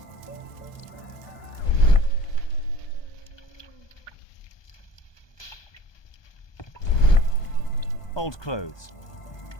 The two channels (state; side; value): late; right; 1.2 ms